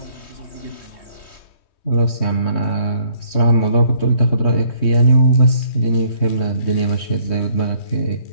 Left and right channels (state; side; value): late; right; 3.2 ms